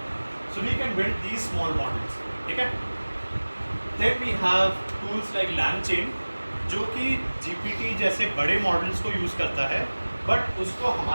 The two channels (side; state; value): both; inverted; correlation -1.00